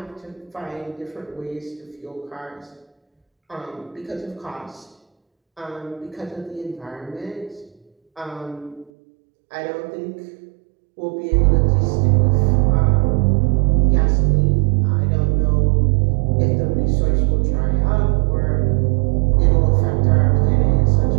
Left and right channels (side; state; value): left; drops out; at 8.9 s